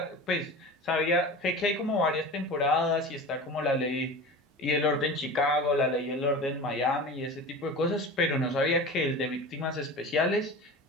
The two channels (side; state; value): both; normal; correlation 0.33